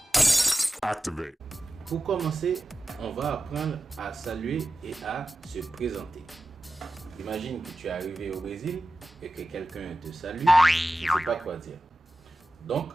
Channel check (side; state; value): both; normal; correlation 0.94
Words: Activate. Pour commencer, on va apprendre à saluer et à se présenter. Imagine que tu es arrivé au Brésil et que quelqu'un te salue, tu ne sais pas quoi dire. Donc,